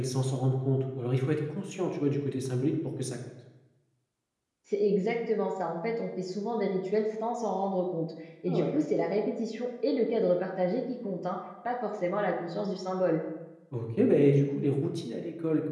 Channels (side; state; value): both; identical; correlation 1.00